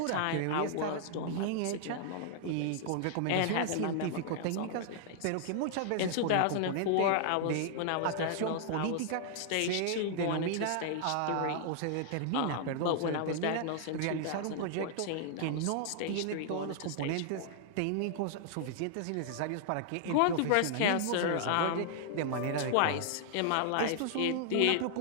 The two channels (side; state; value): both; different; correlation -0.01